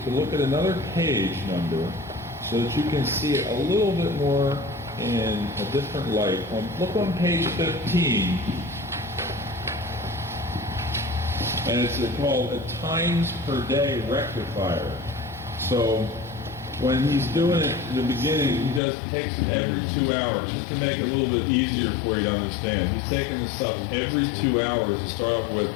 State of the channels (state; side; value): drops out; right; at 18.8 s